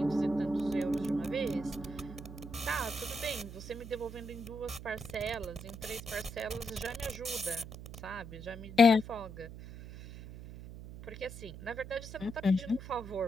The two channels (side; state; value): right; noise; hum, 12 dB below the sound